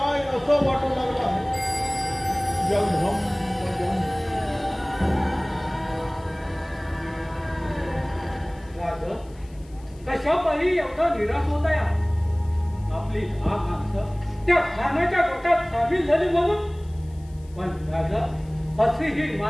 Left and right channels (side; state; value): left; noise; hiss, 28 dB below the sound